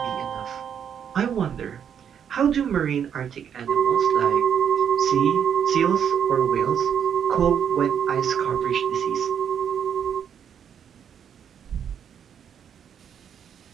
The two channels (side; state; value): left; quieter; 8.3 dB